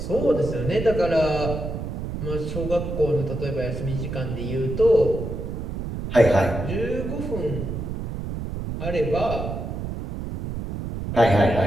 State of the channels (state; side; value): noise; right; rumble, 5 dB below the sound